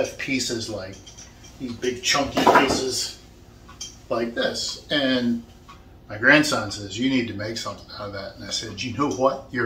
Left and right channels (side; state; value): both; identical; correlation 1.00